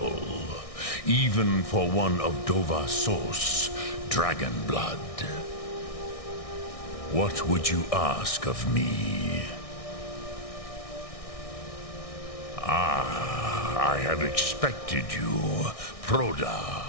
Even for one of Dova Sos, dragon blood. What would you ask of me? I have expected you, Proda.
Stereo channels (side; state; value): right; late; 1.6 ms